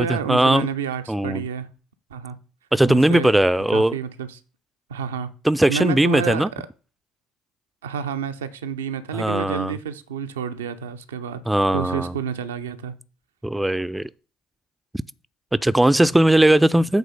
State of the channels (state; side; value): normal; both; correlation 0.85